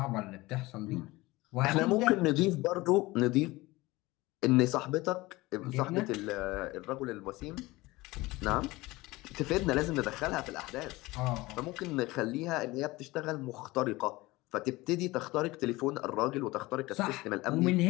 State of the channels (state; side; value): quieter; right; 20.6 dB